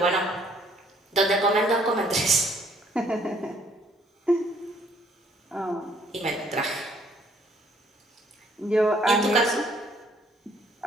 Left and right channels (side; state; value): both; normal; correlation 0.63